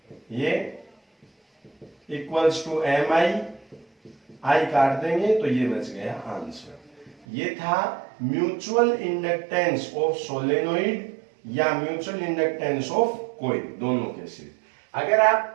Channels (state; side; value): drops out; left; at 7.2 s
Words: ये इक्वल्स टू MI, I काट देंगे तो ये बच गया आंसर। ये था म्यूचुअल इंडक्टेंस ऑफ सोलेनोइड या म्यूचुअल इंडक्टेंस ऑफ कॉइल, दोनों के सिर्फ। अगर